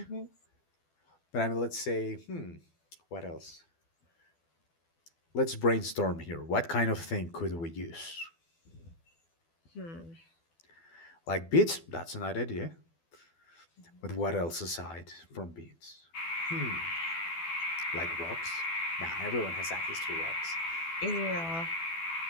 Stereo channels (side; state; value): right; late; 12 ms